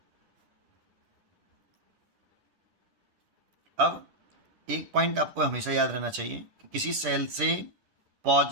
अब एक पॉइंट आपको हमेशा याद रहना चाहिए कि किसी सेल से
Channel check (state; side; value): late; left; 10 ms